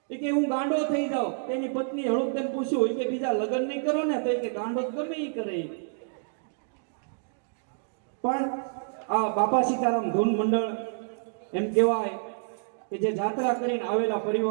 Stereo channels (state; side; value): silent; left; digital silence